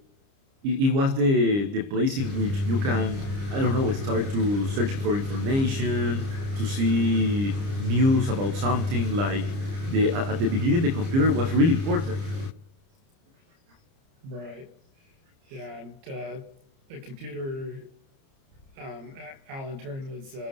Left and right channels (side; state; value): left; late; 30 ms